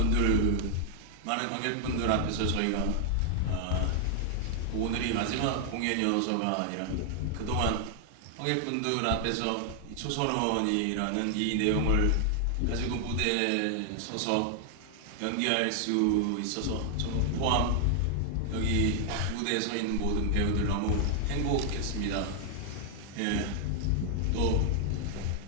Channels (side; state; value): both; different; correlation 0.00